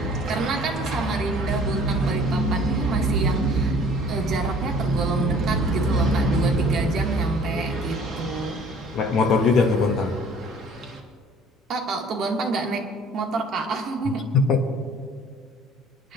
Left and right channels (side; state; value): both; normal; correlation 0.52